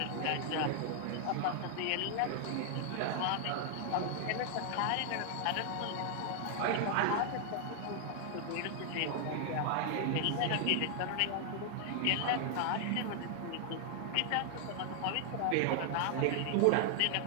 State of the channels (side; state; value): both; different; correlation 0.00